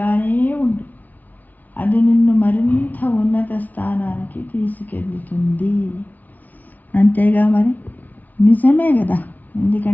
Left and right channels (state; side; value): late; right; 0.077 ms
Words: ఉండు, అది నిన్ను మరింత ఉన్నత స్థానానికి తీసుకెళ్తుంది. అంతేగా మరి, నిజమే కదా.